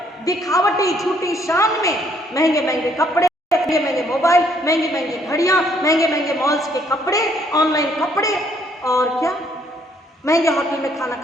दिखावटी, झूठी शान में महंगे महंगे कपड़े, महंगे महंगे मोबाइल, महंगी महंगी घड़ियां, महंगे महंगे मॉल्स के कपड़े, ऑनलाइन कपड़े, और क्या महंगे होटल में खाना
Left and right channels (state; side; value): normal; both; correlation 0.67